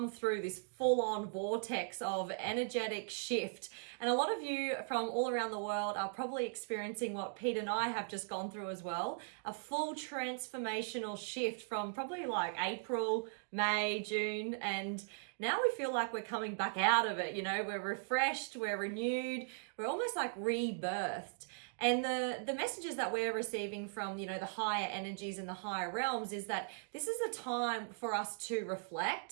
through this full-on vortex of energetic shift. And a lot of you from all around the world are probably experiencing what Pete and I have just gone through as well. A full transformational shift from probably like April, May, June, and now we feel like we're coming back out of it. You know, we're refreshed, we're renewed, we're almost like rebirthed. And the messages that we're receiving from, the higher energies and the higher realms is that this is a time for us to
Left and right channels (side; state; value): left; silent; digital silence